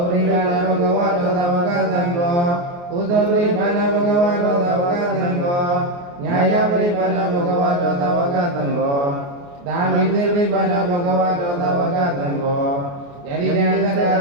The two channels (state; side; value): late; left; 29 ms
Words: ပရိပါဏဘဂဝါတောသဝကသံဃောဥဇဝိပါဏဘဂဝါတောသဝကသံဃောညာယပရိပါဏဘဂဝါတောသဝကသံဃောသာမိသေပရိပါဏဘဂဝါတောသဝကသံဃောယရိတံသတ္တ